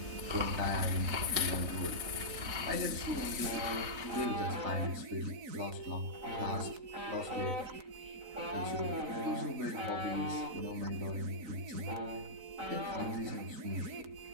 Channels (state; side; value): late; left; 3.9 ms